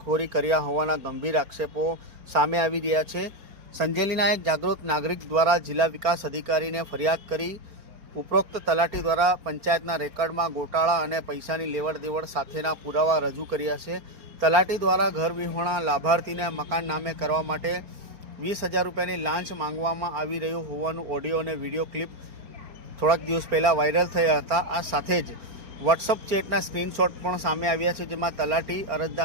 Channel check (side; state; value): left; late; 4.4 ms